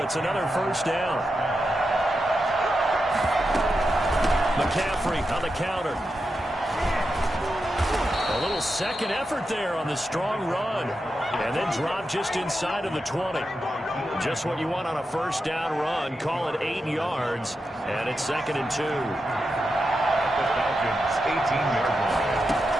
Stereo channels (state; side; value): normal; both; correlation 0.88